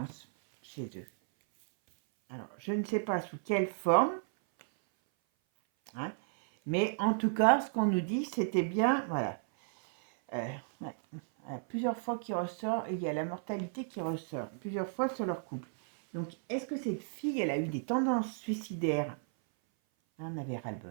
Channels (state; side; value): silent; left; 55 dB below the other